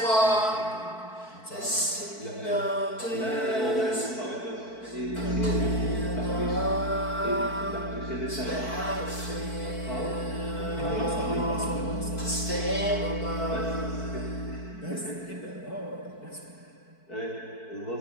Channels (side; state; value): right; late; 4.5 ms